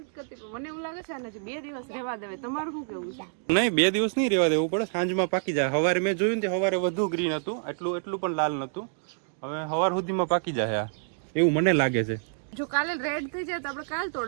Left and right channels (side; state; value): left; silent; digital silence